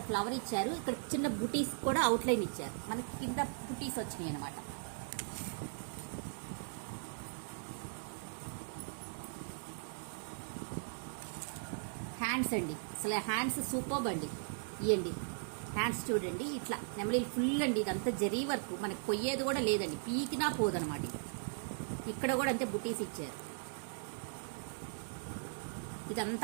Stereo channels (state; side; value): silent; left; digital silence